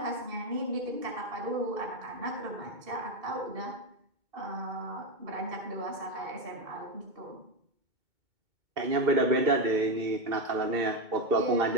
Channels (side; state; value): left; late; 2.2 ms